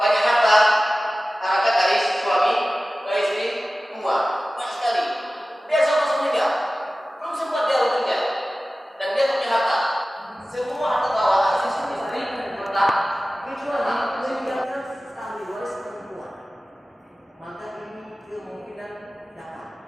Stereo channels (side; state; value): both; normal; correlation 0.96